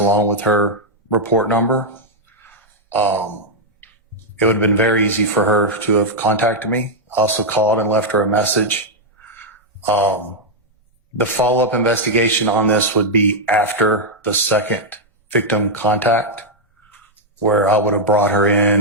with her report number. It would have been very easy for her to have contacted me. I also called and left her a message. The follow-up investigation on this would be after the second victim contact, where I would have brought her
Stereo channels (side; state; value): both; normal; correlation -0.02